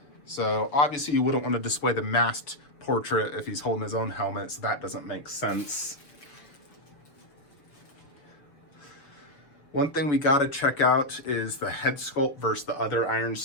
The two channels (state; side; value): late; right; 7.0 ms